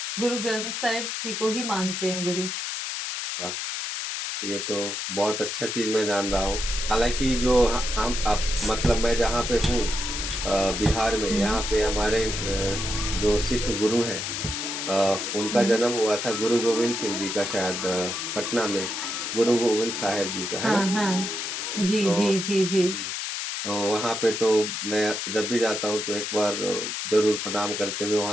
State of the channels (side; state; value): left; noise; hiss, 3 dB below the sound